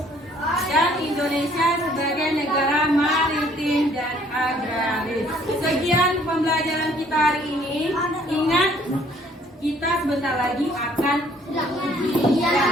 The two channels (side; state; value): both; normal; correlation 0.60